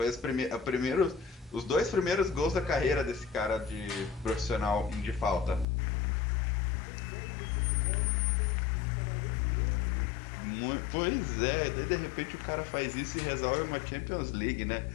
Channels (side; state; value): right; drops out; at 5.7 s